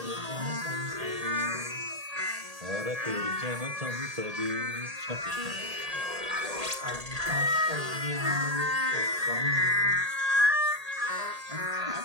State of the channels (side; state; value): left; late; 1.8 ms